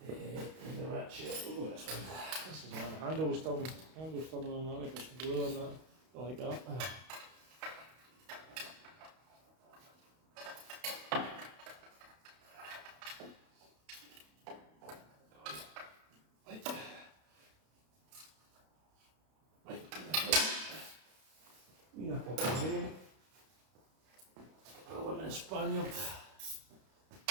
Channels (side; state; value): left; late; 32 ms